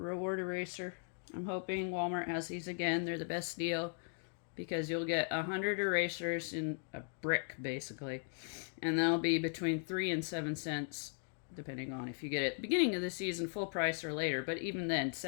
eraser. I'm hoping Walmart has these again. They're the best deal because you'll get 100 erasers in a brick, basically. And they'll be between 3 and 7 cents, depending on if you get it at the beginning of the season, full price, or later. But even then,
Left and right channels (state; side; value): silent; right; 52 dB below the other